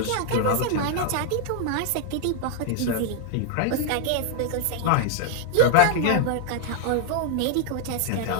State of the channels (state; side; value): different; both; correlation 0.00